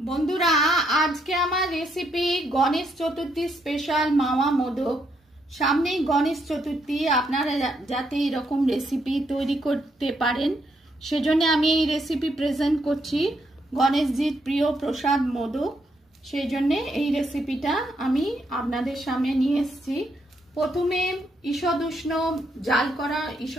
আজকে আমার রেসিপি গণেশ চতুর্থী স্পেশাল মাওয়া মোদক। সামনেই গণেশ চতুর্থী, আপনারা যাতে এরকম রেসিপি তৈরি করতে পারেন সেজন্য আমি এই রেসিপি প্রেজেন্ট করছি। গণেশজির প্রিয় প্রসাদ মোদক, সেই জন্যে এই রেসিপিটা আমি আপনাদের সামনে নিয়ে এসেছি। প্রথমে ঈষদুষ্ণ জাল করা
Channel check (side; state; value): both; normal; correlation 0.76